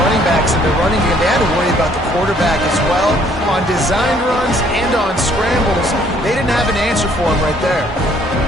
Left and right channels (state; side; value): normal; both; correlation 0.62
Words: backs in the running game, they had to worry about the quarterback as well. On designed runs and on scrambles, they didn't have an answer for him right there.